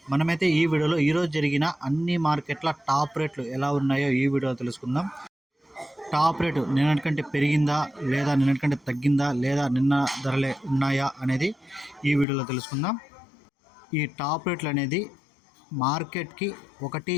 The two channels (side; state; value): right; drops out; at 12.2 s